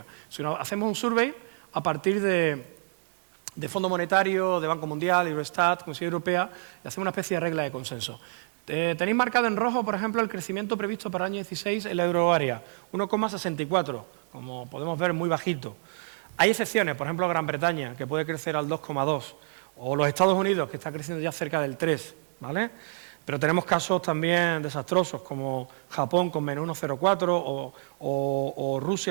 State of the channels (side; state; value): left; silent; 59 dB below the other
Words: sino hacemos un survey a partir de Fondo Monetario, de Banco Mundial, Eurostat, Comisión Europea, y hacemos una especie de regla de consenso. Tenéis marcado en rojo, por ejemplo, el crecimiento previsto para el año 16 en la euroárea, 1,64, como podemos ver, muy bajito. Hay excepciones, por ejemplo, Gran Bretaña, que puede crecer al 2,2, o los Estados Unidos, que está creciendo ya cerca del 3, ¿vale? Pero tenemos casos también desastrosos, como Japón con menos 1,04 o